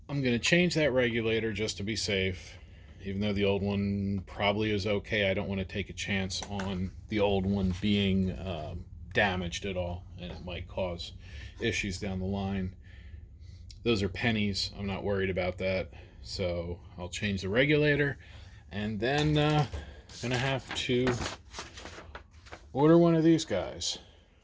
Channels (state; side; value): identical; both; correlation 1.00